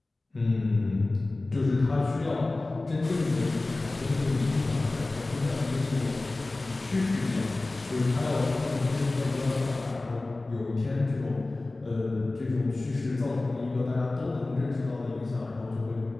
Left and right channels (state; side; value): quieter; right; 3.0 dB